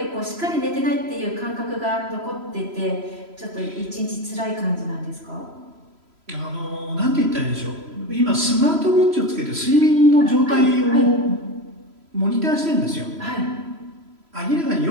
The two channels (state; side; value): late; left; 3.0 ms